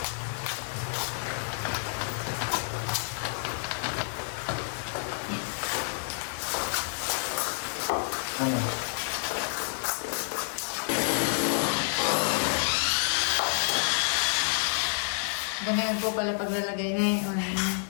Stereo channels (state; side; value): silent; right; digital silence